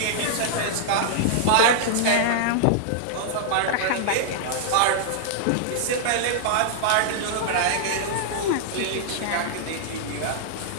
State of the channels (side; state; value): both; different; correlation -0.01